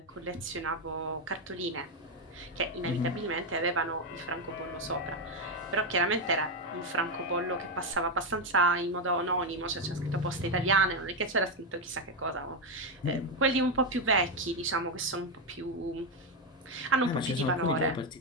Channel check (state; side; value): normal; both; correlation 0.06